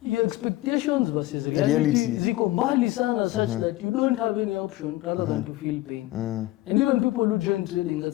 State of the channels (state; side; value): quieter; right; 17.4 dB